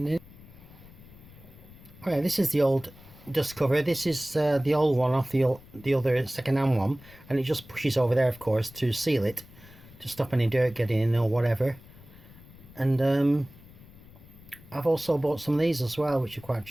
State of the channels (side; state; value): left; noise; rumble, 21 dB below the sound